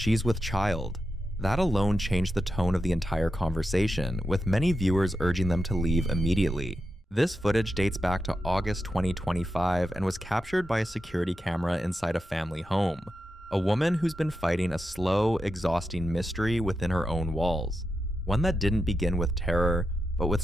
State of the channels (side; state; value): both; normal; correlation 0.88